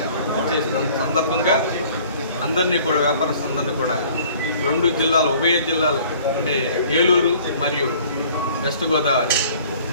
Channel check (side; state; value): both; inverted; correlation -0.53